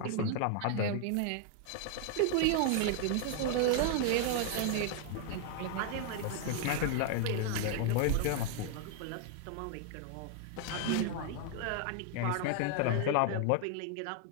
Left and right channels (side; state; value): both; different; correlation 0.00